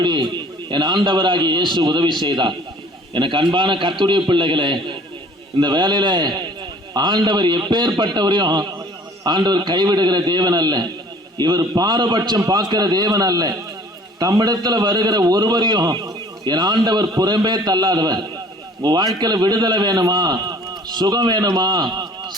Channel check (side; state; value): both; normal; correlation 0.52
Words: என் ஆண்டவராகிய இயேசு உதவி செய்தார். எனக்கு அன்பான கர்த்தருடைய பிள்ளைகளே, இந்த வேலையில ஆண்டவர் எப்பேற்பட்டவரையும் ஆண்டவர் கைவிடுகிற தேவன் அல்ல. இவர் பாரபட்சம் பார்க்கிற தேவன் அல்ல. தம்மிடத்துல வருகிற ஒருவரையும் என் ஆண்டவர் புறம்பே தள்ளாதவர். உங்க வாழ்க்கையில விடுதலை வேணுமா, சுகம் வேணுமா,